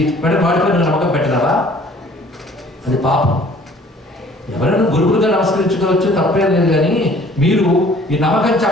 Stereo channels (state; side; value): normal; both; correlation 0.54